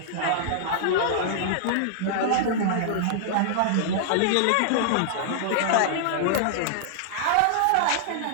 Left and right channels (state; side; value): different; both; correlation -0.01